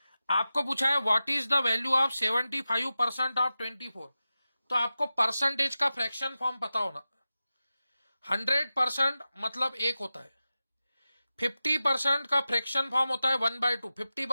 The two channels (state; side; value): inverted; both; correlation -0.94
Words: आपको पूछा है what is the value of 75% of 24, तो आपको परसेंटेज का फ्रैक्शन फॉर्म पता होना। 100% मतलब 1 होता है, 50% का फ्रैक्शन फॉर्म होता है 1/2,